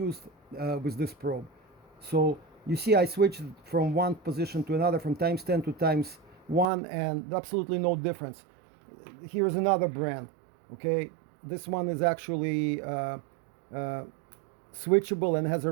with this probe. So you see I switched from one position to another, from times 10 to times 1, and absolutely no difference. Here's another brand. Okay, this one is actually switchable and has a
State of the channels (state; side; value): drops out; left; at 6.7 s